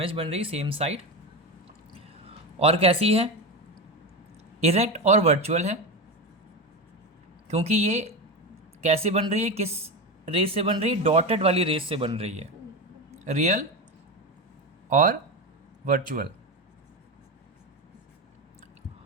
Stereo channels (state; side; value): normal; both; correlation 0.19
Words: बन रही, सेम साइड। और कैसी है, इरेक्ट और वर्चुअल है, क्योंकि ये कैसे बन रही है, किस रेस से बन रही है, डॉटेड वाली रेस से बन रही है, रियल और वर्चुअल।